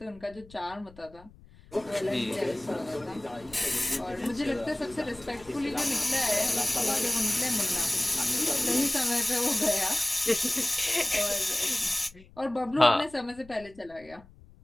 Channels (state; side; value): noise; left; rumble, 23 dB below the sound